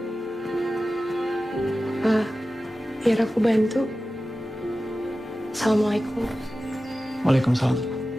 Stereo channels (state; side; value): normal; both; correlation 0.95